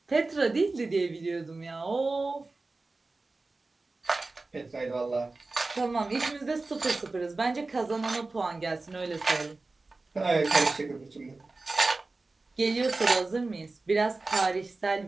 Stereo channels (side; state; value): left; quieter; 3.4 dB